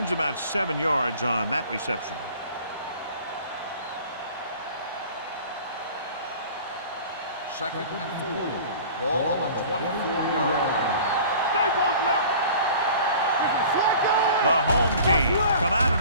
about 7 yards on that reception. Second and 4. Ball on the 24-yard line. They both left. The home team come out in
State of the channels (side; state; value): both; inverted; correlation -0.44